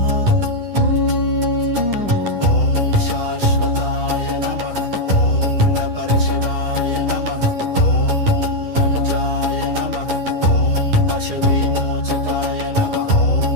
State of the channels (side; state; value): left; late; 10 ms